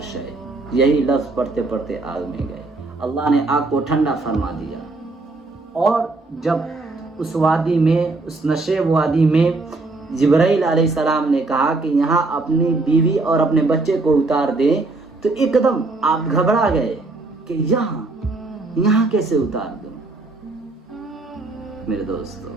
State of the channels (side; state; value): left; quieter; 3.4 dB